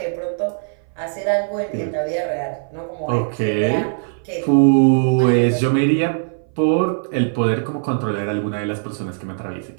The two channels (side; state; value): left; silent; 59 dB below the other